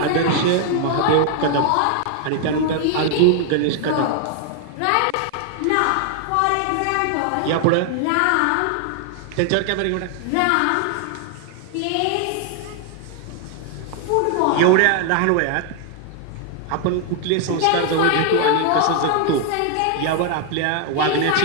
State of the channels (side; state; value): both; different; correlation 0.00